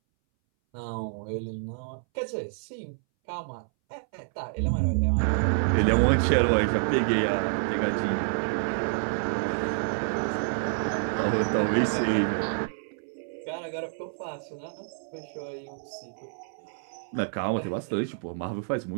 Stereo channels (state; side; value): silent; left; 59 dB below the other